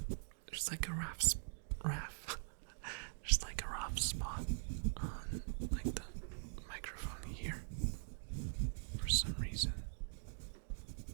like a there's like a rough spot on like the microphone here for some reason.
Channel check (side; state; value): left; silent; digital silence